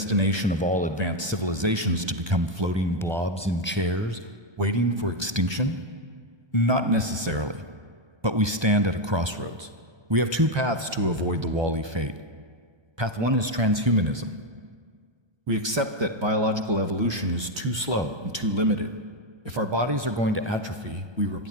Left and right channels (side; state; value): left; late; 1.2 ms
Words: of all advanced civilizations to become floating blobs in chairs, waiting for extinction? Not necessarily, but we stand at a crossroads. We have two paths to avoid the Wall-E fate. Path one is transhumanism. We accept that biological evolution is too slow and too limited. If our bodies are going to atrophy, we